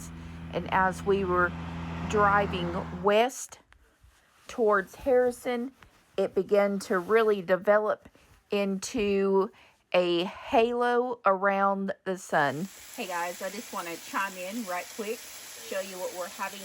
and as we were driving west towards Harrison, it began to really develop into a halo around the sun. Hey guys, I just want to chime in right quick, show you what we're having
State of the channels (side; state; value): both; identical; correlation 1.00